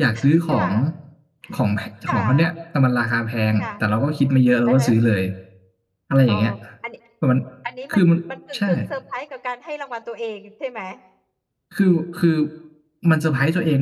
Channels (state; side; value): identical; both; correlation 1.00